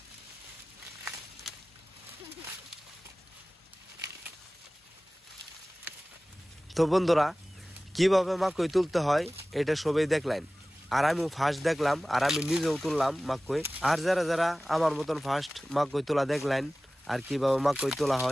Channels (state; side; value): normal; both; correlation 0.97